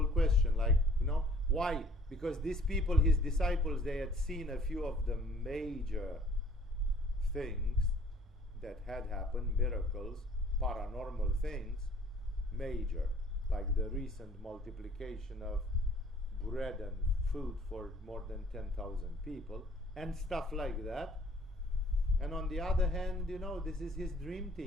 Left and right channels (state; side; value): normal; both; correlation 0.54